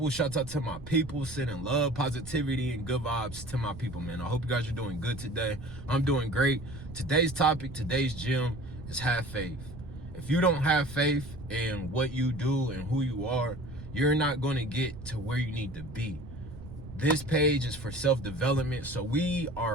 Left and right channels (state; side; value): noise; right; rumble, 13 dB below the sound